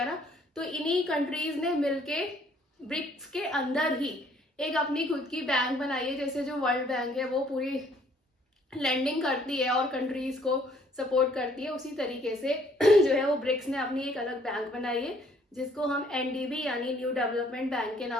ना। तो इन्हीं कंट्रीज ने मिलके ब्रिक्स के अंदर ही एक अपनी खुद की बैंक बनाई है। जैसे जो वर्ल्ड बैंक है वो पूरी लैंडिंग करती है और कंट्रीज को सपोर्ट करती है, उसी तरीके से जो है वो ब्रिक्स ने अपनी एक अलग बैंक बनाई है जिसको हम NDB यानी न्यू डेवलपमेंट बैंक के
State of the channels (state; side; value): normal; both; correlation 0.62